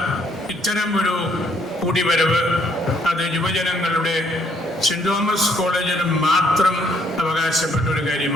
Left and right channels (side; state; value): both; normal; correlation 0.68